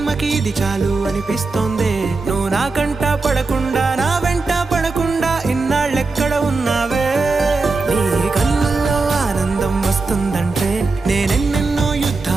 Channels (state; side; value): quieter; left; 3.8 dB